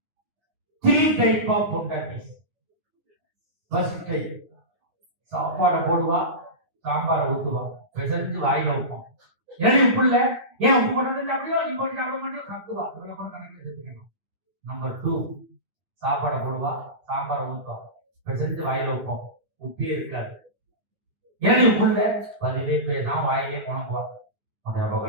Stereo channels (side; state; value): left; late; 9.6 ms